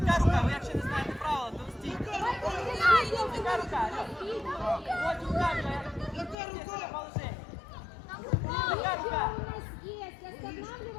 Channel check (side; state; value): right; drops out; at 6.4 s